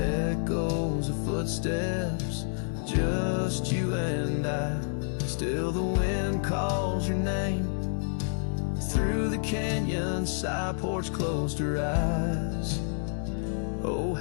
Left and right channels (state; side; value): silent; right; digital silence